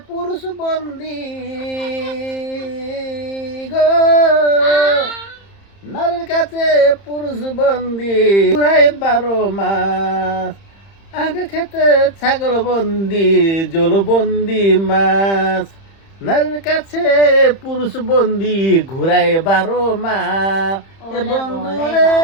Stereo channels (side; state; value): right; late; 30 ms